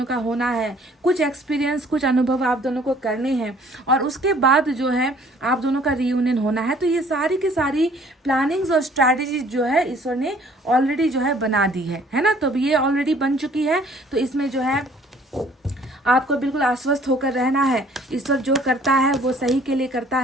का होना है, कुछ एक्सपीरियंस, कुछ अनुभव आप दोनों को करने हैं और उसके बाद जो है आप दोनों का रीयूनियन होना है। तो ये सारी की सारी प्लानिंग्स और स्ट्रैटेजी जो है ईश्वर ने ऑलरेडी जो है बना दी है ना। तो ये ऑलरेडी बन चुकी है। तो इसमें जो है आपको बिल्कुल आश्वस्त होकर रहना है। ईश्वर जो करता है वो सही के लिए करता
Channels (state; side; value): normal; both; correlation 0.57